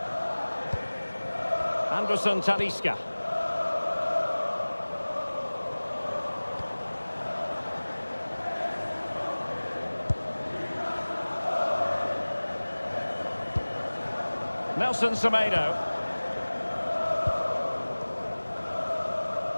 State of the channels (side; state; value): both; inverted; correlation -1.00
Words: Anderson Talisca. Nelson Semedo.